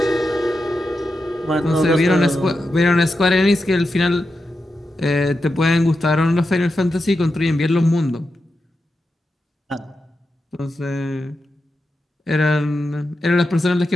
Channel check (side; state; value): both; normal; correlation 0.89